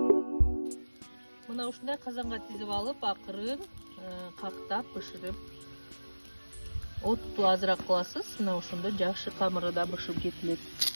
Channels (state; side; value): inverted; both; correlation -1.00